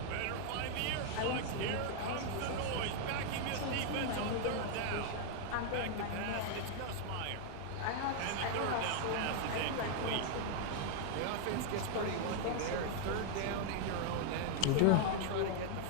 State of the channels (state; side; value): different; both; correlation 0.00